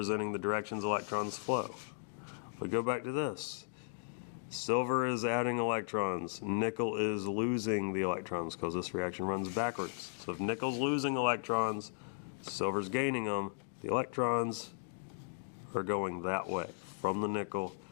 the directions electrons flow. If we go back to this, silver is adding electrons, nickel is losing the electrons because this reaction runs backwards. So if nickel's losing electrons, silver's gaining them, the electrons are going that way, from the nickel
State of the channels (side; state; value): right; silent; digital silence